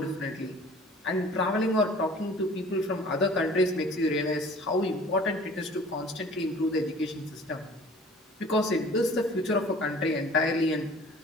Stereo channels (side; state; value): both; normal; correlation 0.47